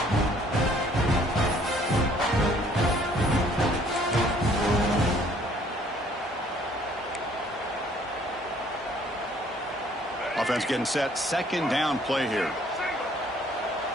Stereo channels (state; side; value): normal; both; correlation 0.60